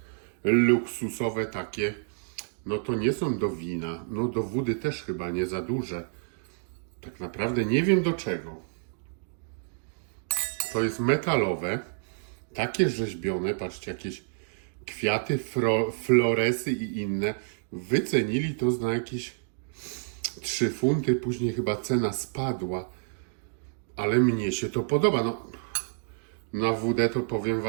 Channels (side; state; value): left; silent; digital silence